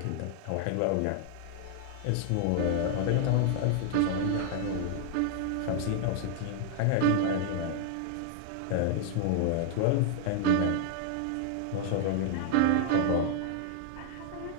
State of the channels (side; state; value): both; different; correlation 0.00